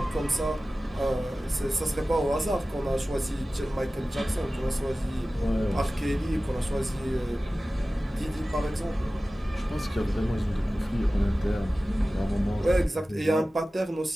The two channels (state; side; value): normal; both; correlation 0.96